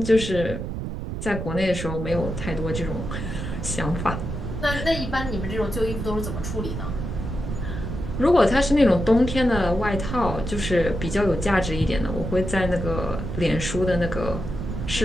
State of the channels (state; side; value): noise; right; rumble, 5 dB below the sound